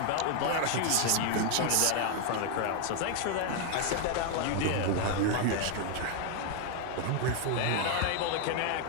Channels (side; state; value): both; different; correlation 0.00